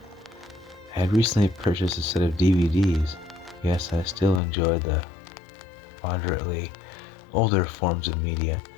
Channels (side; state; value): right; drops out; at 4.4 s